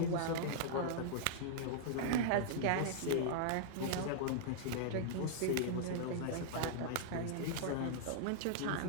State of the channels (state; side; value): different; both; correlation -0.01